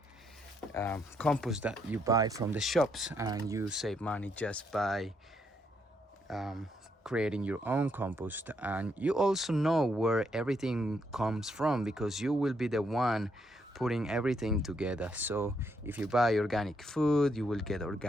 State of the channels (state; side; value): normal; both; correlation 0.75